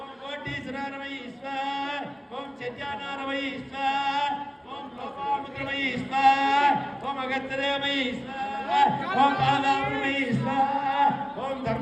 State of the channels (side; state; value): both; identical; correlation 1.00